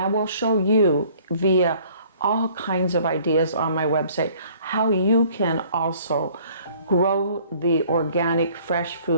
will show you via all kinds of ideas on my website how you can also grow the organic fresh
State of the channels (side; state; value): both; inverted; correlation -0.56